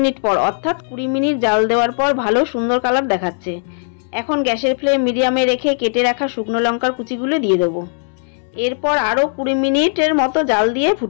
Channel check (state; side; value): silent; right; 67 dB below the other